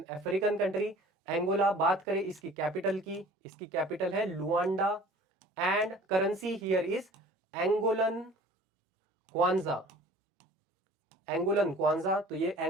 African country. Angola, बात करें इसकी कैपिटल की, इसकी कैपिटल है Luanda and currency here is Angolan kwanza, Angolan kwanza. तो ये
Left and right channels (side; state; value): both; normal; correlation 0.47